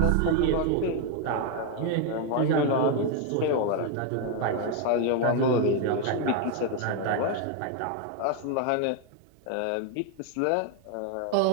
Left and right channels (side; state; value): both; different; correlation 0.01